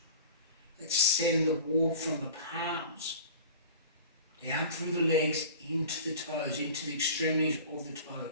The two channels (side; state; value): both; inverted; correlation -0.40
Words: Let's send the warmth from the palms down through the legs, into the toes, into the extremities of the